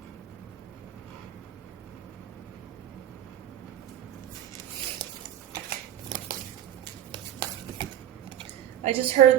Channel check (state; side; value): quieter; left; 11.2 dB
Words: I just heard